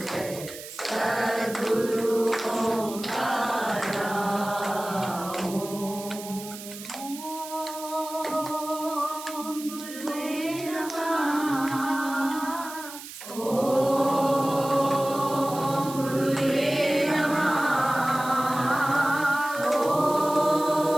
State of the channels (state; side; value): noise; right; hiss, 13 dB below the sound